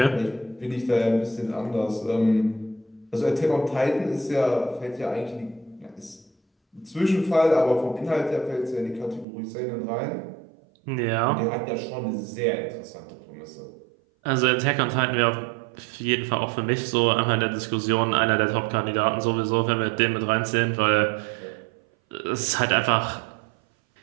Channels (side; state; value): left; drops out; at 9.2 s